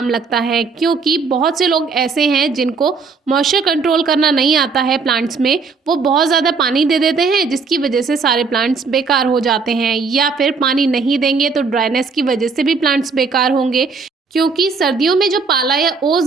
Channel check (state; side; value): quieter; left; 4.8 dB